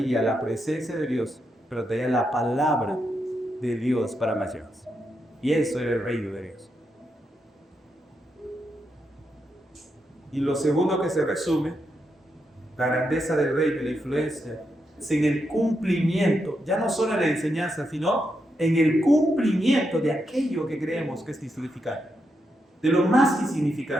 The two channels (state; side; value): normal; both; correlation 0.83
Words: la presencia de Dios, pero traía la palabra de Dios para naciones. Y eso era el reino de Dios. Y lo segundo que se resume, la grandeza del reino y la influencia, es en el cumplimiento, ya no solo en la enseñanza, sino en el cumplimiento de aquello que creemos que es insignificante, de lo más